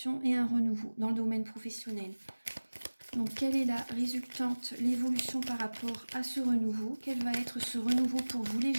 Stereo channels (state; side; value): inverted; both; correlation -1.00